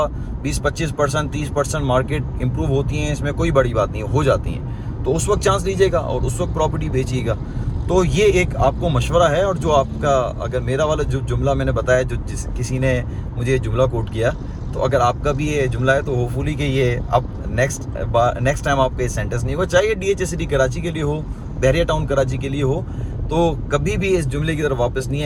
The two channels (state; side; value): identical; both; correlation 1.00